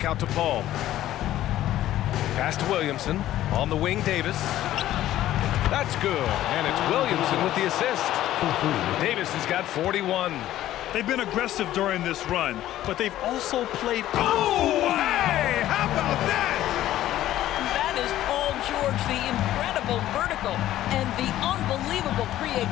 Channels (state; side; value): quieter; right; 13.6 dB